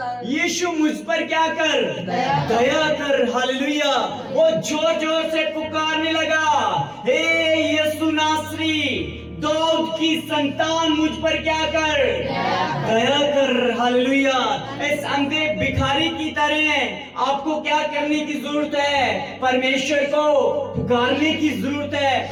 यीशु मुझ पर क्या कर, दया कर। दया कर। हालेलुया। वो जोर जोर से पुकारने लगा, हे यीशु नासरी, दाऊद की संतान, मुझ पर क्या कर, दया कर। हालेलुया। इस अंधे भिखारी की तरह आपको क्या करने की जरूरत है, परमेश्वर को पुकारने की जरूरत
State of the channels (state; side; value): identical; both; correlation 1.00